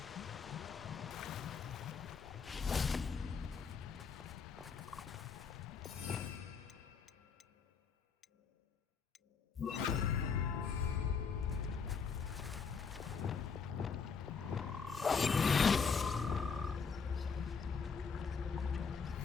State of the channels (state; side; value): quieter; right; 5.7 dB